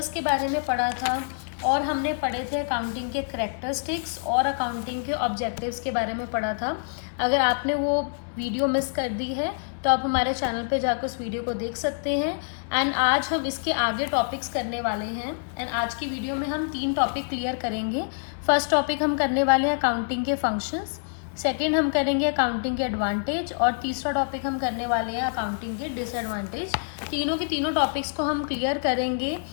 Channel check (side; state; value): right; silent; 61 dB below the other